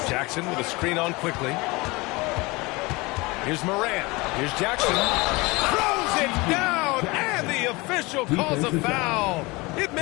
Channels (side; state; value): right; quieter; 24.0 dB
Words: Jackson with a screen on Quickly. Here's Morant. Here's Jackson. Throws it down, and the official calls a foul. It